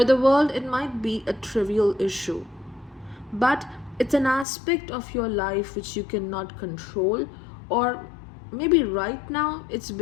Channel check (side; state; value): right; drops out; at 4.5 s